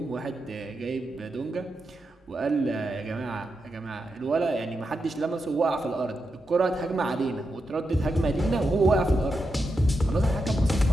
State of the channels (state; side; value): normal; both; correlation 0.87